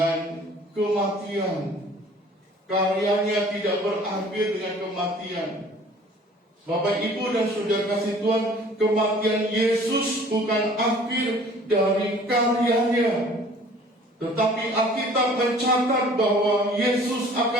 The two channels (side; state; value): both; normal; correlation 0.51